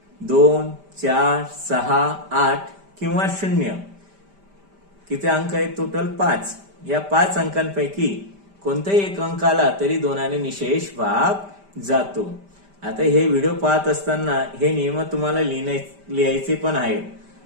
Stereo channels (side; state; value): left; late; 5.1 ms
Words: 2 4 6 8 किंवा 0. किती अंक आहेत टोटल 5. या 5 अंकांपैकी कोणताही एक अंक आला तरी 2 ने निशेष भाग जातो. आता हे व्हिडिओ पाहत असताना हे नियम तुम्हाला लिहायचे पण आहेत.